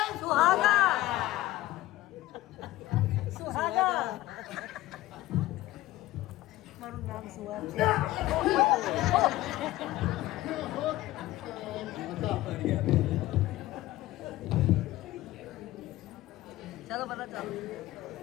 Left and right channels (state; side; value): quieter; right; 16.6 dB